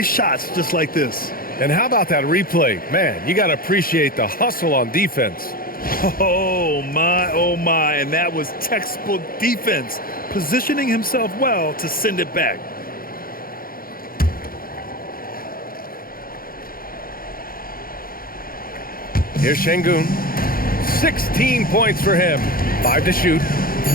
shots just like this. And how about that replay? Man, you got to appreciate the hustle on defense. Oh, my, and that was textbook defense, positioning himself well to send it back. Here's Şengün. 16 points for him. 5 to shoot.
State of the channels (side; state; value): right; late; 0.42 ms